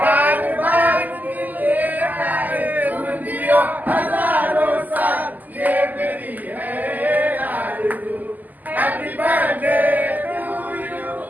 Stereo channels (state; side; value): late; left; 0.082 ms